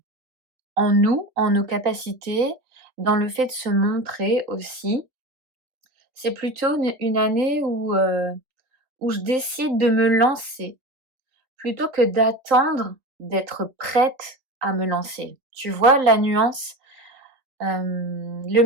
nous, en nos capacités, dans le fait de se montrer aussi. C'est plutôt une année où je décide de me lancer, plutôt que d'attendre d'être prête à me lancer. Tu vois la nuance? Le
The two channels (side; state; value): left; late; 3.6 ms